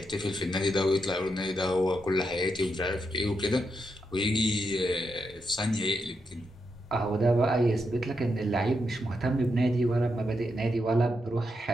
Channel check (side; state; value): both; normal; correlation 0.83